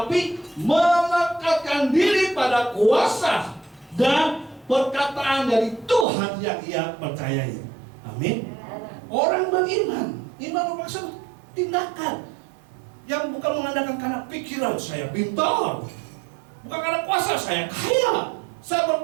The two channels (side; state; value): left; drops out; at 6.1 s